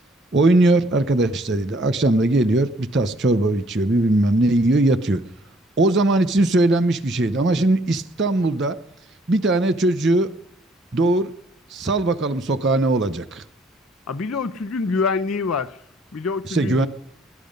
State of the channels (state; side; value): normal; both; correlation 0.63